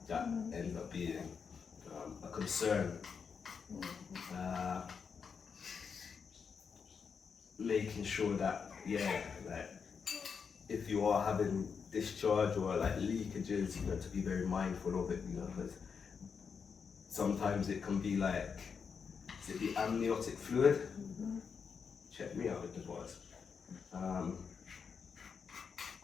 ends up being a concern. Making sure that, if you are having discharge or leakages, to be very mindful of it, because sometimes it can be is it the amniotic fluid? Mm-hmm. Check me out with the bars.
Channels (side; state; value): right; quieter; 6.1 dB